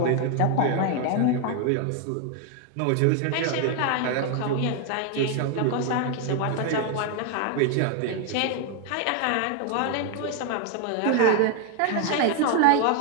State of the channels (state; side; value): different; both; correlation 0.01